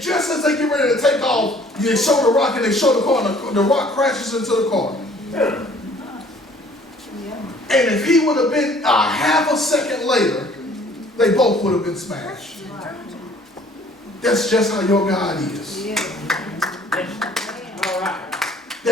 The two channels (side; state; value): both; normal; correlation 0.56